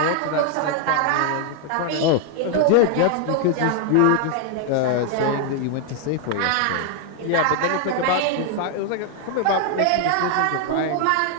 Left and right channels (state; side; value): different; both; correlation 0.00